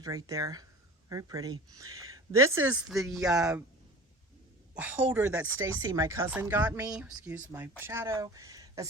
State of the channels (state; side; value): normal; both; correlation 0.38